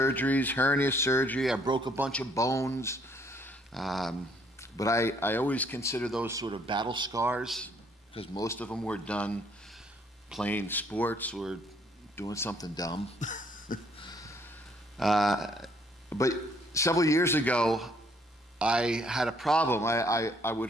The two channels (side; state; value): both; normal; correlation 0.65